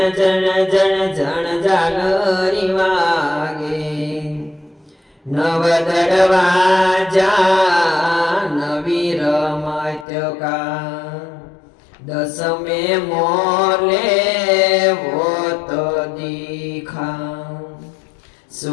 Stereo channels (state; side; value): drops out; right; at 10.1 s